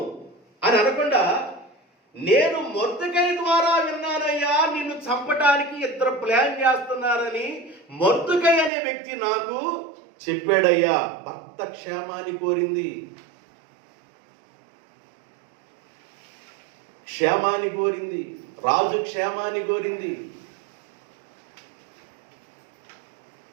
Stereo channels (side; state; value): left; drops out; at 8.7 s